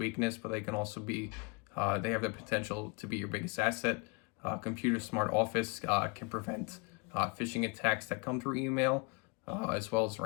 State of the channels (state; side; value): quieter; right; 29.9 dB